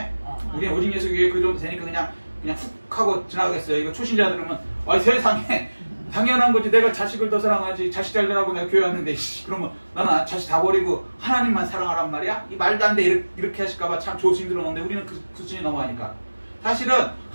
우리는 오직 예수 교회 그 정도 되니까 그냥 훅 하고 지나가겠어요. 이거 초신자 들으면 세상에 당연한 거지. 내가 자식을 더 사랑하지. 자식 잘 되라고 내가 교회 왔는데 그러면 나는 자식 다 버리고 하나님만 사랑하란 말이야? 이 말도 안 돼. 이렇게 하실까봐 참 조심 들었는데 우리는 그 수준이 넘어가니까 사실은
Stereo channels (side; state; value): both; inverted; correlation -1.00